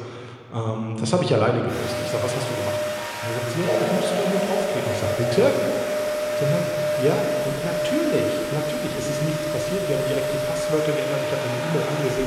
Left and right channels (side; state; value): both; identical; correlation 1.00